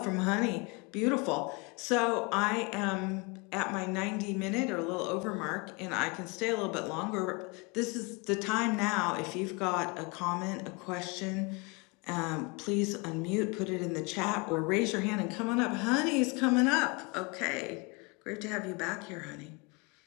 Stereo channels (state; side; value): quieter; right; 28.9 dB